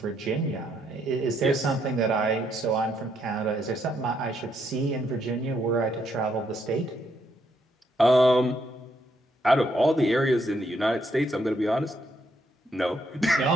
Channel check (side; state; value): both; normal; correlation 0.75